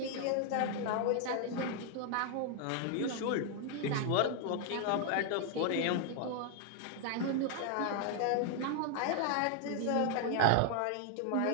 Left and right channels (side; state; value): both; different; correlation 0.00